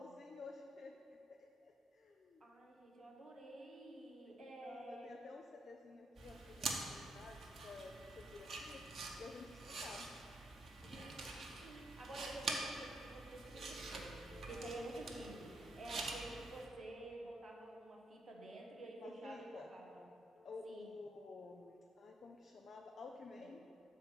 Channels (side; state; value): both; normal; correlation 0.76